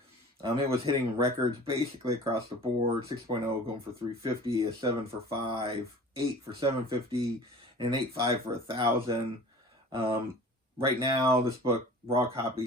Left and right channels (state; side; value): normal; both; correlation 0.43